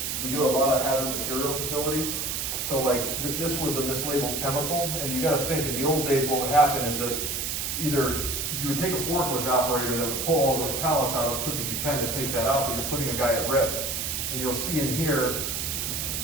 We do a lot of hazard material facilities. So like this was a mislabeled chemical, and you gotta think, in the old days what would happen is that either you would take a forklift operator that would pull all those pallets out as quick as you can to take that out, but you're putting a guy at risk. And you'll see in here,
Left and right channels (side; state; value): right; noise; hiss, 2 dB below the sound